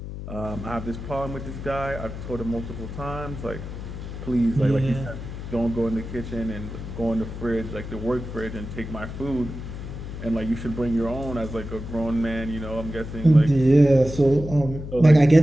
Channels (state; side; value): noise; left; hum, 9 dB below the sound